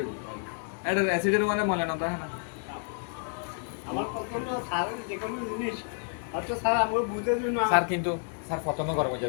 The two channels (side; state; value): right; silent; 55 dB below the other